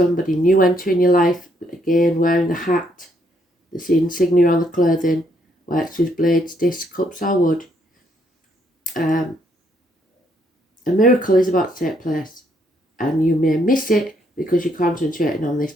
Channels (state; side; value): normal; both; correlation 0.72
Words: new entering your life, again wearing the hat, the insignia on the clothing, works with blades, discs, cups or wood. A miracle is about to take place, and you may miss it because you're concentrating on this